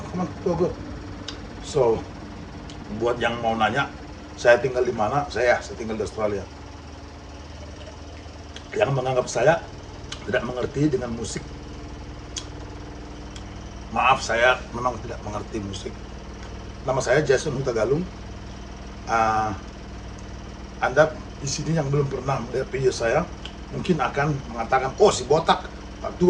come on, go go. So, buat yang mau nanya, saya tinggal di mana? Saya tinggal di Australia. Yang menganggap saya tidak mengerti dengan musik, maaf, saya memang tidak mengerti musik. Nama saya Jason Huta Galung. Ah, Anda di sini yang belum pernah melihat video saya, mungkin akan mengatakan, oh si botak,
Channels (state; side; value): identical; both; correlation 1.00